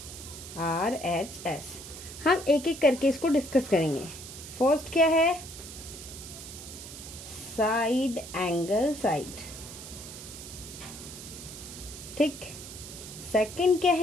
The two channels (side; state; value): right; noise; hiss, 12 dB below the sound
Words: हम एक एक करके इसको डिस्कस करेंगे। फर्स्ट क्या है? साइड एंगल साइड, ठीक। सेकंड क्या